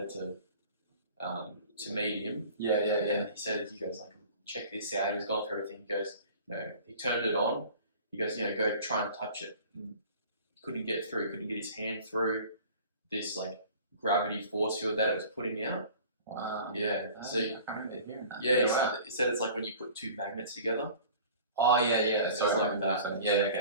to meet him. Yeah. And he goes like, check this out. He was going through everything. He goes, he turned it on. He goes, go try and touch it. And he couldn't get through. He couldn't get his hand through this like gravity force field that it was putting out. Wow. Yeah. So I can't remember hearing that. Yeah, he said it's like when you put two magnets together. Oh yeah. So it's like that. Yeah.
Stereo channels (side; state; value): both; inverted; correlation -0.44